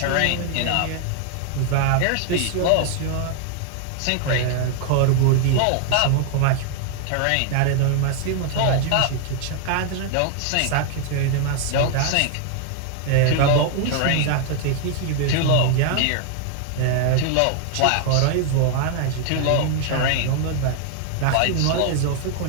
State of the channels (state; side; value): different; both; correlation 0.00